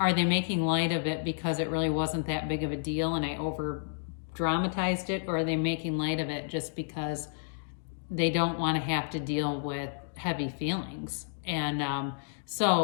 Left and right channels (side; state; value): right; silent; digital silence